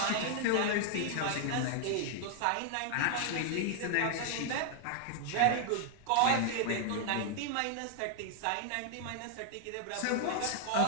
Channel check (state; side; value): different; both; correlation 0.00